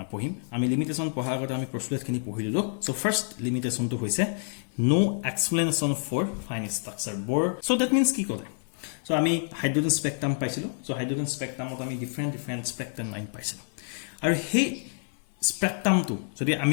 pohim. Ami limitation pohar agate ami postulate khini pohililo. So first limitation to hoise no explanation for fine structure Bohr. So that means ki kore, so ami hydrogen spectrum paisilo. So hydrogen spectrum ot ami different spectrum line paisilo, aru he spectrum to jodi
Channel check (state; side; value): silent; right; digital silence